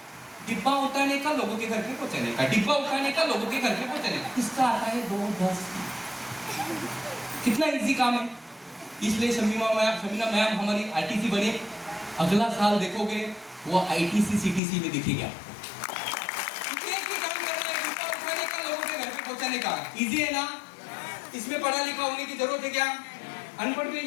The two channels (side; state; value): right; drops out; at 14.6 s